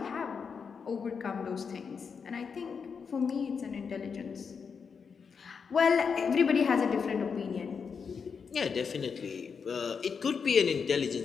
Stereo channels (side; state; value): right; quieter; 6.0 dB